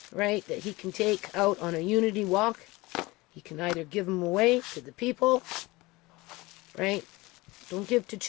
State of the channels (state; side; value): quieter; right; 21.7 dB